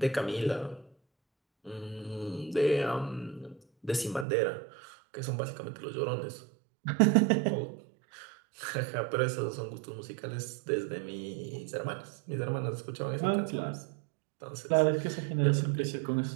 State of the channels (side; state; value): left; drops out; at 4.2 s